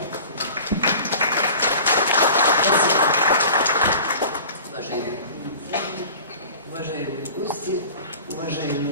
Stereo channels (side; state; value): both; inverted; correlation -0.41